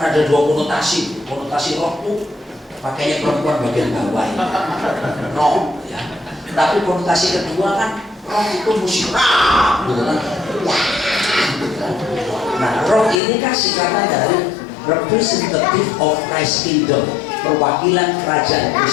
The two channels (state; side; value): drops out; right; at 13.2 s